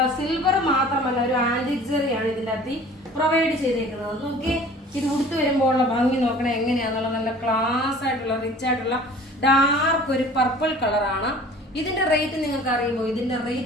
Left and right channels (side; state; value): both; normal; correlation 0.46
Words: സിൽവർ മാത്രമല്ല, ഒരു ആന്റിക് ജെറിയാണ് ഇതിന്റെ അകത്ത് പ്രൊവൈഡ് ചെയ്തേക്കുന്നത്. നോക്കി, ഇത് ഉടുത്ത് വരുമ്പോഴുള്ള ഭംഗി നോക്കണേ എങ്ങനെയാന്നുള്ള നല്ല ക്ലാസ് ആയിട്ടുള്ള റിച്ച് ആയിട്ടുള്ള ഡാർക്ക് ഒരു പർപ്പിൾ കളറാണ്. ഇതിന്റെ റേറ്റ് നിങ്ങൾക്ക് അറിയുമോ? ഇതിന്റെ